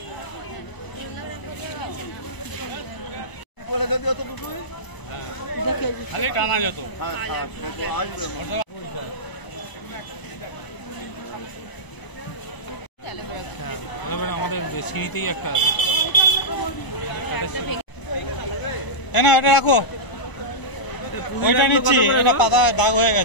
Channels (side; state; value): right; late; 1.0 ms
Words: বলে যদি অত দুটোই খালি টানা যেত। আসবে আমাদের সিঁড়িতেই একটা আছে। না এটা রাখো, ওইটা নিচ্ছি, এটা পাতায় দাগ হয়ে